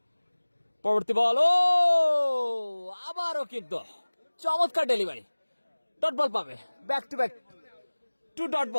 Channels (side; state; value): both; inverted; correlation -1.00